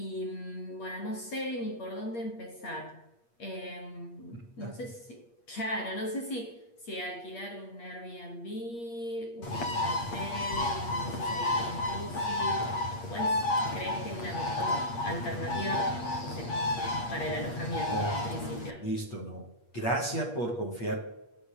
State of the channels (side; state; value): right; late; 8.5 ms